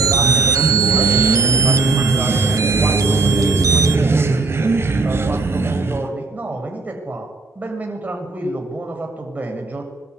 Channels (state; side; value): quieter; left; 3.7 dB